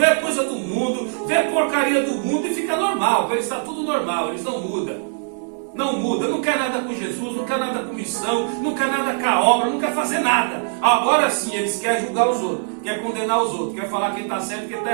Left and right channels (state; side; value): silent; left; digital silence